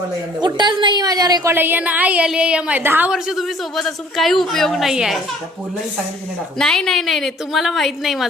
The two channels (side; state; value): both; normal; correlation 0.55